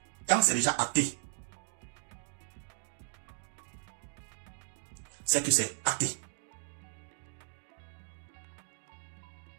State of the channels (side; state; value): left; silent; 54 dB below the other